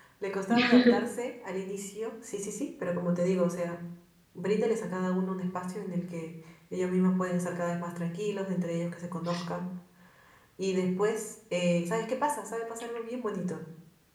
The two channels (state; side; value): identical; both; correlation 1.00